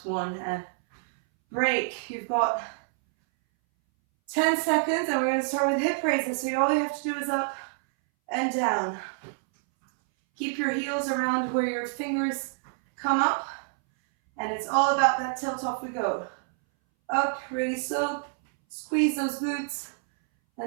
1, and break. You've got 10 seconds, and we're going to start with hip raises. So all you have to do is up and down. Keep your heels around where your fingers come up, and it's all about that tilt. Off we go. Up, really slow, squeeze those glutes,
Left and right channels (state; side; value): silent; left; 60 dB below the other